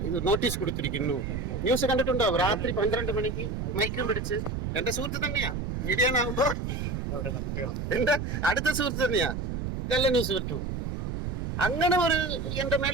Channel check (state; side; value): noise; right; rumble, 3 dB below the sound